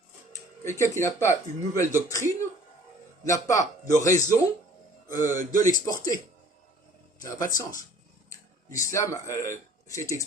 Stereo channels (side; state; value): both; normal; correlation 0.52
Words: Quelqu'un qui n'a pas une nouvelle doctrine n'a pas de raison de l'exporter. Ça n'a pas de sens. L'islam s'est